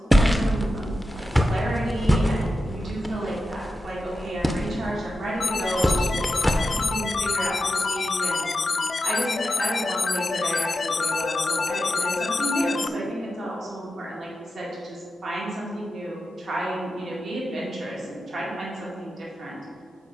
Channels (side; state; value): both; normal; correlation 0.90